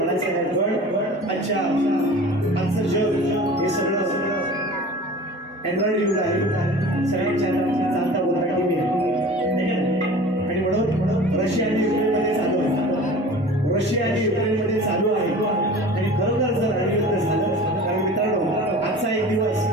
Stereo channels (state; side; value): normal; both; correlation 0.40